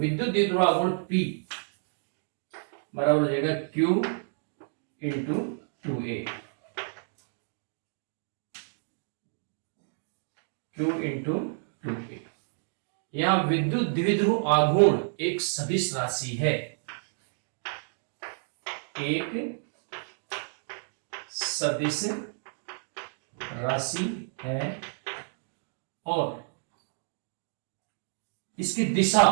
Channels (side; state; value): left; silent; digital silence